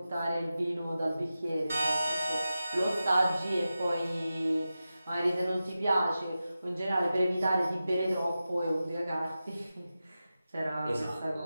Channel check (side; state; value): both; inverted; correlation -0.93